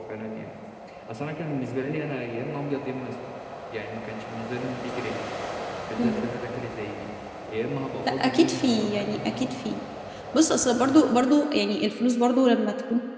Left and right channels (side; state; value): both; identical; correlation 1.00